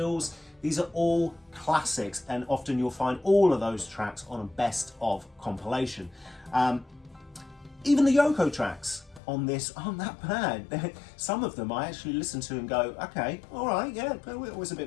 These are all classics, and often you'll find all of those tracks on a best of compilation. Even the Yoko tracks on this aren't that bad. Some of them I actually listen to and go, okay, all right, yeah, it was a bit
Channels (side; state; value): right; drops out; at 9.2 s